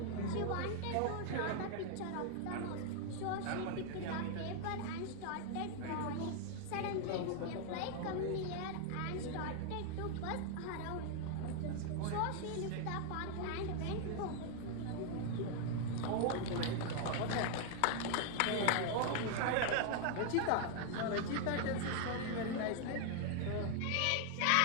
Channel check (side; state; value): both; different; correlation 0.00